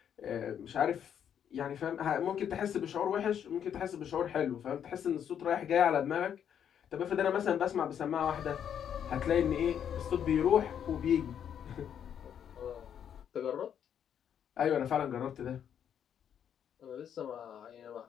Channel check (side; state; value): right; quieter; 8.8 dB